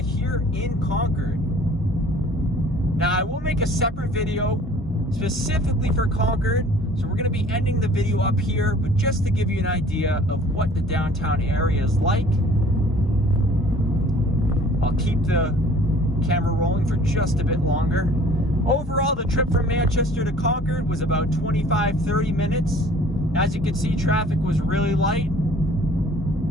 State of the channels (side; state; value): both; normal; correlation 0.51